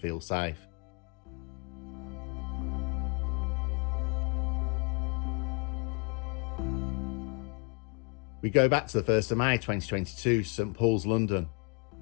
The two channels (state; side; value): quieter; right; 33.4 dB